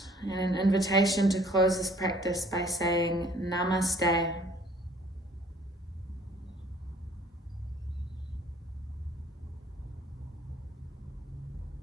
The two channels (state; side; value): normal; both; correlation 0.56